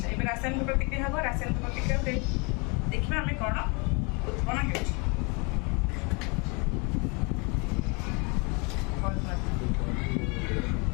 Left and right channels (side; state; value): right; quieter; 31.2 dB